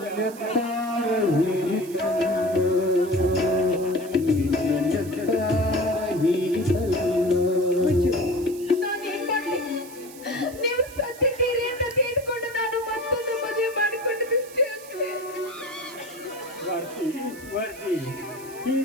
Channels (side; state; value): right; noise; hiss, 18 dB below the sound